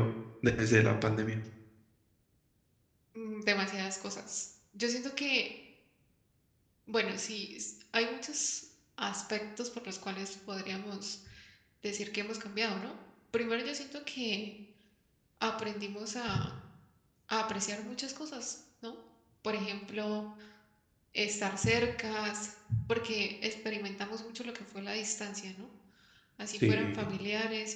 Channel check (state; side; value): identical; both; correlation 1.00